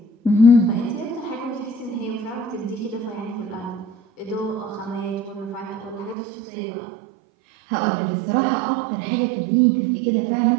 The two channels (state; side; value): drops out; left; at 6.2 s